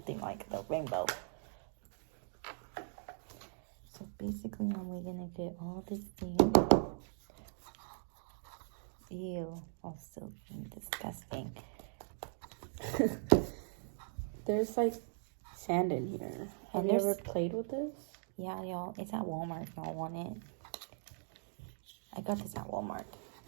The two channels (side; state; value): left; silent; digital silence